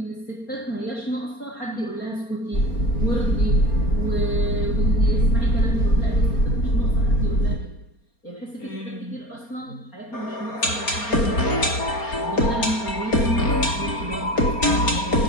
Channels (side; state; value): right; late; 4.3 ms